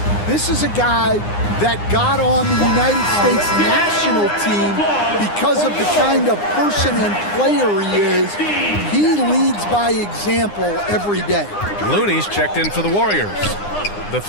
This is a guy that got on the United States national team because of the kind of person and player he is. He leads by example every day. Looney's checked in for the Warriors. The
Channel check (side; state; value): right; late; 9.8 ms